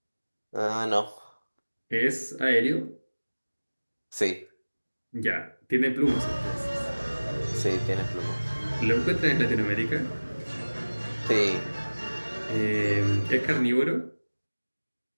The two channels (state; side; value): inverted; both; correlation -1.00